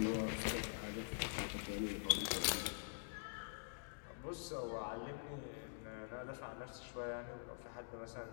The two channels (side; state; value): right; silent; digital silence